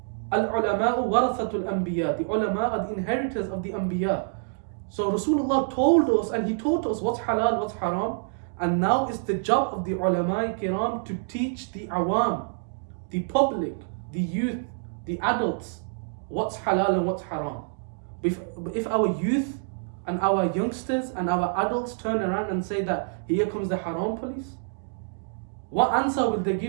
Al-ulama'u warathatul anbiya. The ulama are the inheritors of the anbiya. So Rasulullah told us and He taught us what's halal, what's haram. And now it's the job of the ulama kiram to teach the awam, the public, the youth, the adults, what's halal and what's haram. But if our youth and our youngsters and our adults turn around and say that here comes the haram police, what answer will they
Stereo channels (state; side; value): silent; left; digital silence